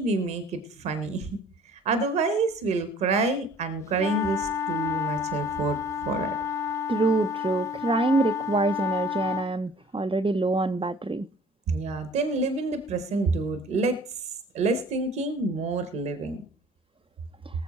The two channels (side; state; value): both; normal; correlation 0.51